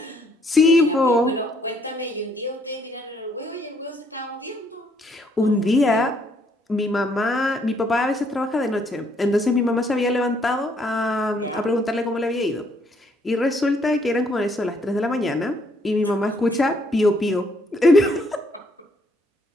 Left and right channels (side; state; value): both; normal; correlation 0.69